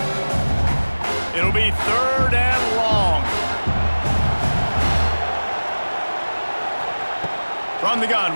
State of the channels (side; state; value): both; inverted; correlation -1.00